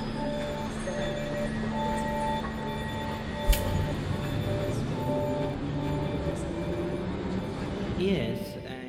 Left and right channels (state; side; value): identical; both; correlation 1.00